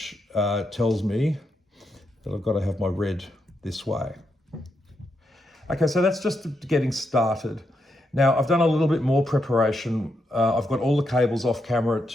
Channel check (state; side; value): normal; both; correlation 0.82